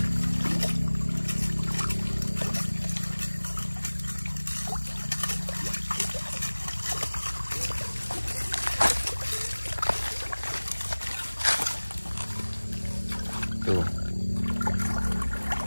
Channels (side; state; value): both; inverted; correlation -1.00